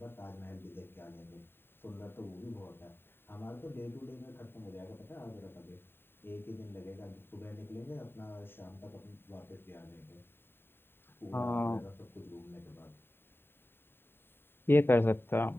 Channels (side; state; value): right; late; 0.11 ms